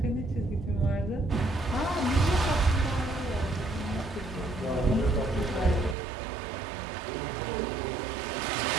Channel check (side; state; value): left; drops out; at 6.0 s